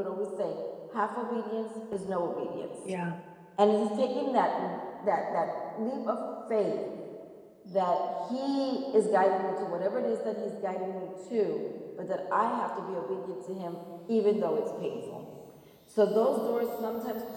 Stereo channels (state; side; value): identical; both; correlation 1.00